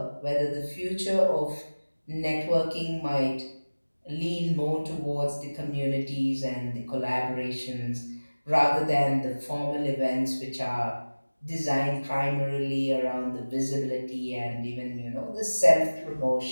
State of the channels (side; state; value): both; inverted; correlation -1.00